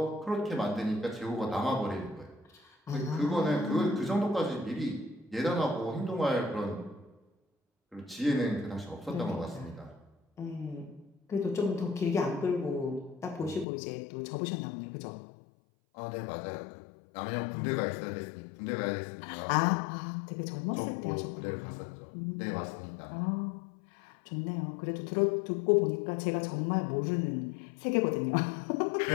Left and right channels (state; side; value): drops out; right; at 13.7 s